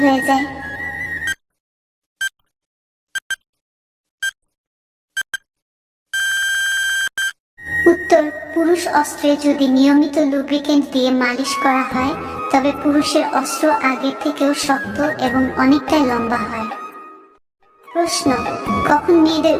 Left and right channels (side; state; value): both; identical; correlation 1.00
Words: হয়ে যায়? উত্তর: পুরুষ অস্ত্রে যদি নিয়মিত লুব্রিকেন্ট দিয়ে মালিশ করা হয় তবে পুরুষের অস্ত্র আগের থেকেও শক্ত এবং অনেকটাই লম্বা হয়। প্রশ্ন: কখন মেয়েদের